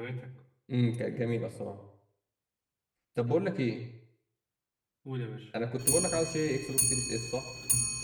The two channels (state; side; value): identical; both; correlation 1.00